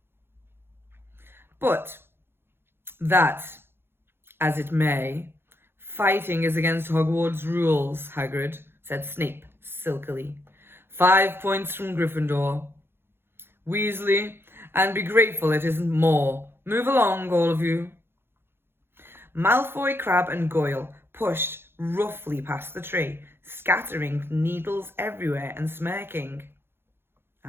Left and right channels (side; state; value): left; late; 0.11 ms